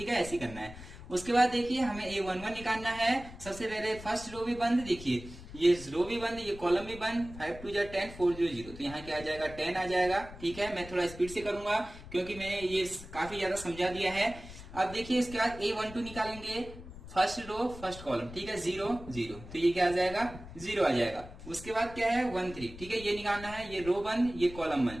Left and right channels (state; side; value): noise; left; rumble, 15 dB below the sound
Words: है, ऐसे करना है। उसके बाद देखिए हमें A11 निकालना है। सबसे पहले फर्स्ट रो भी बंद, देखिए ये रो भी बंद, ये कॉलम भी बंद। 5 2 जा 10, 4 0 0, तो यहाँ क्या आ जाएगा, 10 आ जाएगा। ठीक है, मैं थोड़ा स्पीड से करूंगा क्योंकि मैंने ये काफी ज्यादा समझा दिया है। अब देखिए इसके बाद A12 निकालेंगे, फर्स्ट रो फर्स्ट कॉलम। ठीक है, 0 0, तो ये क्या आ जाएगा, 0 आ जाएगा। उसके बाद क्या है, 1 3। ठीक है, ये निकालना है, ये रो बंद, ये कॉलम